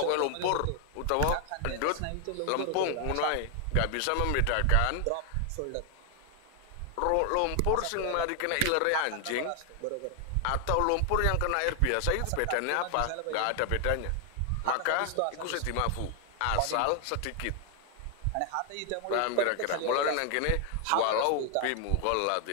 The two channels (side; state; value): both; different; correlation 0.00